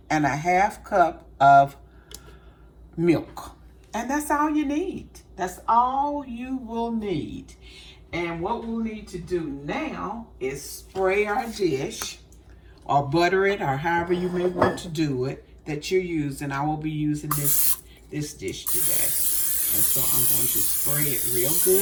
and a 1/2 cup of milk. And that's all you need. That's all you will need. And what we'll need to do now is spray our dish or butter it, or however you may want to do it that you're using. I will be using this dish today. And so I'm going to spray it real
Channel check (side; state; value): both; identical; correlation 1.00